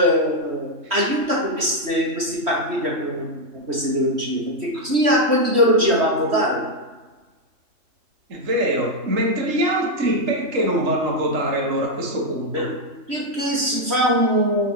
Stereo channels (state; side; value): late; left; 3.1 ms